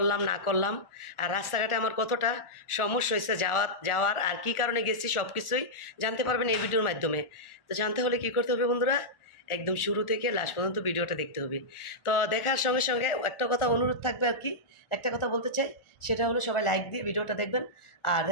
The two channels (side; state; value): right; late; 1.4 ms